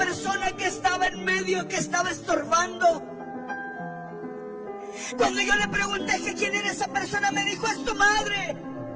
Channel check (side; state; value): both; identical; correlation 1.00